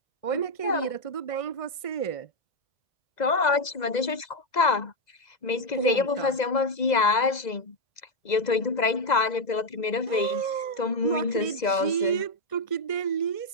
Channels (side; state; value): right; late; 2.0 ms